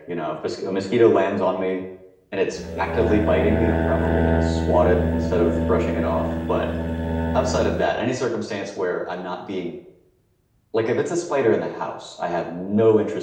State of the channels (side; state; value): both; identical; correlation 1.00